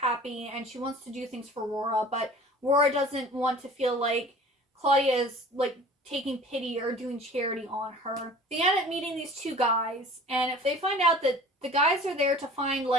and she wants to do things for Rora, but Rora doesn't want to feel like Claudia is like taking pity or doing charity on her. They end up meeting these 2 guys, and if they find out that the guys are there to find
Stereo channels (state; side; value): normal; both; correlation 0.44